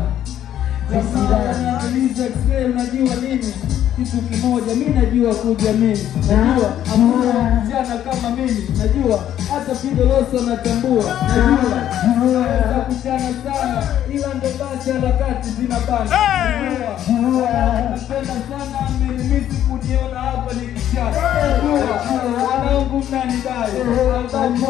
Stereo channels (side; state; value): right; quieter; 11.2 dB